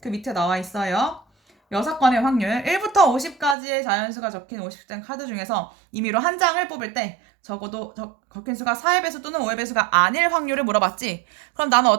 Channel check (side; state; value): left; drops out; at 3.6 s